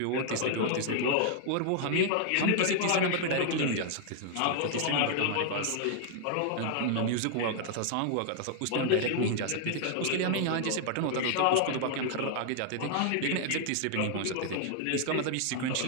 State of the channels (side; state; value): both; different; correlation 0.00